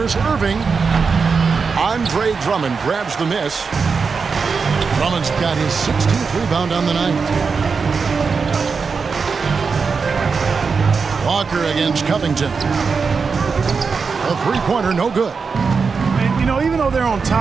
Irving. Andre Drummond grabs the miss. Drummond's got his 16th rebound on the night. Walker against Covington. A three-pointer, no good. And, you know, even though they're on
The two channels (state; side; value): quieter; left; 5.2 dB